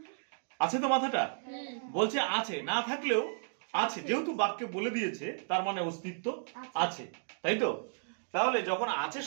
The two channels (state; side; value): silent; left; digital silence